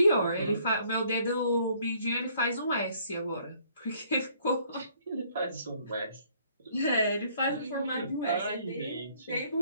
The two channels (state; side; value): inverted; both; correlation -0.63